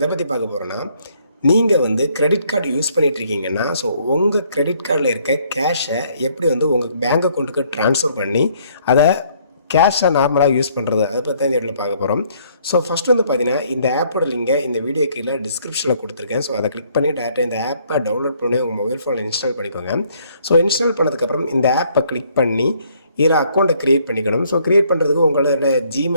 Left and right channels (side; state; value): both; inverted; correlation -0.65